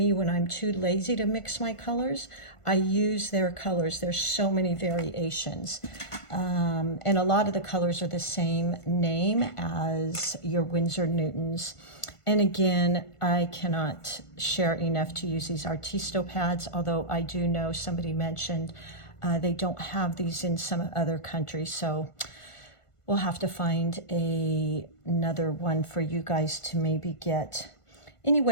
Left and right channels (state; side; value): late; right; 1.5 ms